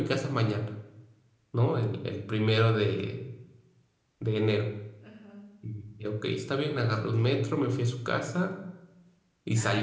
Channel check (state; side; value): identical; both; correlation 1.00